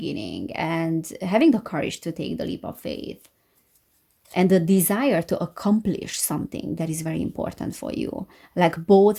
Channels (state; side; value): identical; both; correlation 1.00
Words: and having the courage to take the leap of faith and the desire to accomplish something that is very important for you, like